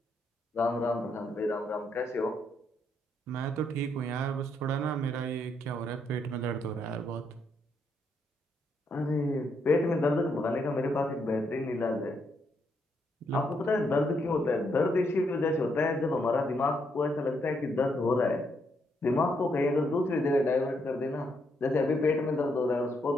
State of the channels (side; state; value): both; normal; correlation 0.76